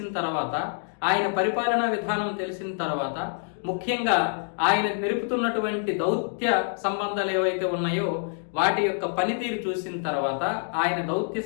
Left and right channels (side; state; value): right; silent; digital silence